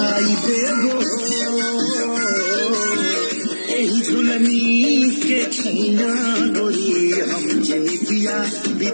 देबो एही झुलनी के छैया गोरी हम जिंदगिया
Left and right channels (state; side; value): inverted; both; correlation -1.00